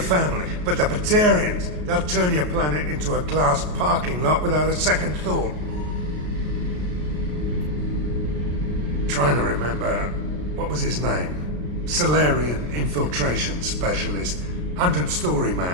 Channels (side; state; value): left; late; 33 ms